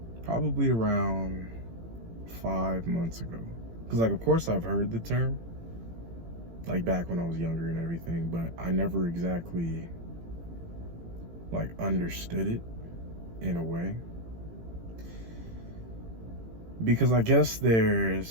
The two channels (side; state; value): left; late; 18 ms